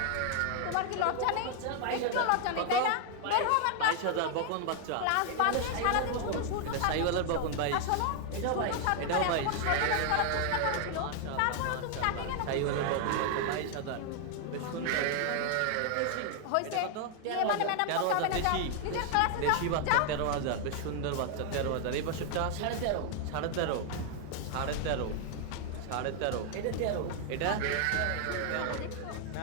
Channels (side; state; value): both; different; correlation 0.00